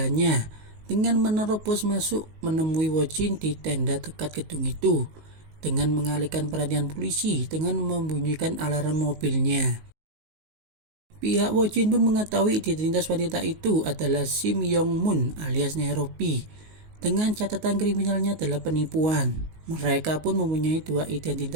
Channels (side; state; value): left; late; 19 ms